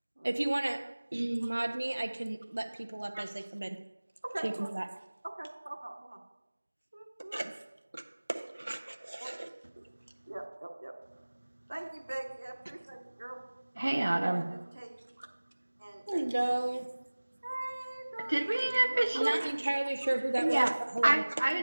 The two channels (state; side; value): inverted; both; correlation -1.00